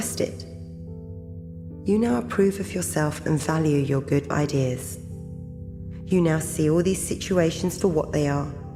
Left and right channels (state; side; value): identical; both; correlation 1.00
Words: it. You now approve of yourself and value your good ideas. You now see all these situations for what they are.